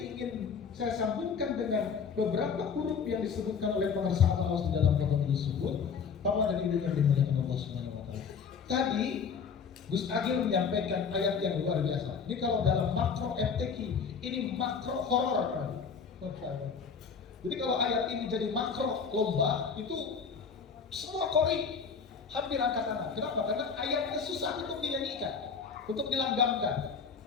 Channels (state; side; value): quieter; right; 6.0 dB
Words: saya sambungkan dengan beberapa huruf yang disebutkan oleh pengarsa Abah Awas di dalam Fadhailus Zuhur, bahwa ada ide yang dimuliakan Allah Subhanahu wa taala. Tadi Gus Agil menyampaikan ayat yang luar biasa. Ini kalau dalam makro FTQ, ini makro horor. Jadi kalau ayat ini jadi makro lomba, itu semua kori hampir angkat tangan. Kenapa? Karena ayatnya susah untuk dinyanyikan, untuk dilanggamkan.